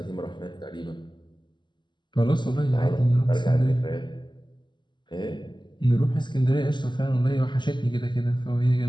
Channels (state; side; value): late; right; 0.22 ms